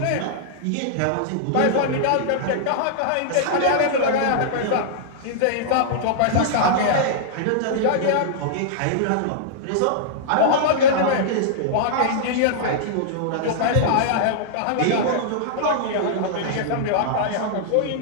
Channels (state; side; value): different; both; correlation -0.02